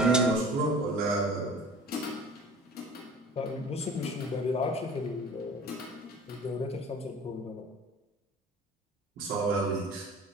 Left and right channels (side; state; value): both; normal; correlation 0.44